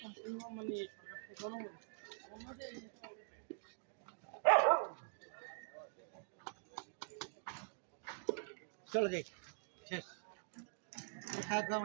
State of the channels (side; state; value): left; silent; digital silence